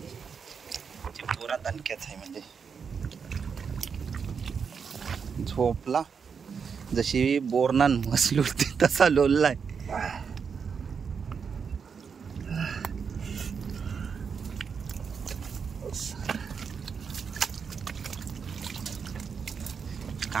चिंबोरा दणक्याच आहे. म्हणजे झोपला जशी बोरनान मसली होती तसा लोललाय.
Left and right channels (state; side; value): quieter; left; 6.2 dB